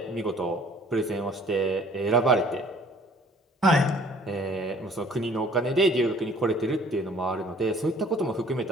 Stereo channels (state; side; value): normal; both; correlation 0.55